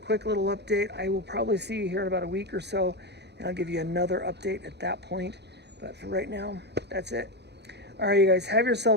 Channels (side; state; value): left; late; 0.49 ms